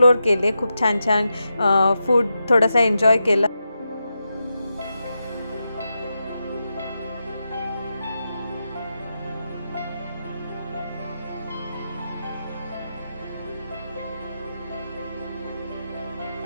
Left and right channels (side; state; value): both; inverted; correlation -0.88